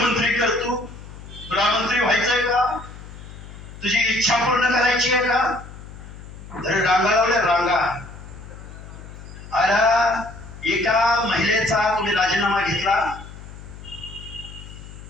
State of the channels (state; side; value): noise; left; hum, 15 dB below the sound